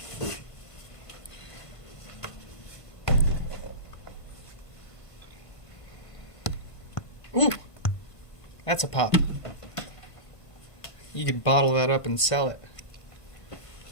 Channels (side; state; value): right; late; 1.5 ms